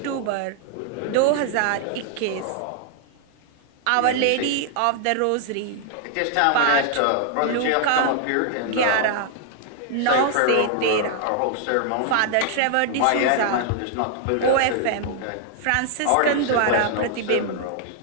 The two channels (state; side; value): different; both; correlation -0.01